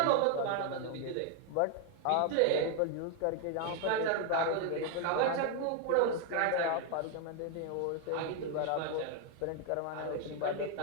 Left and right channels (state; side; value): different; both; correlation 0.01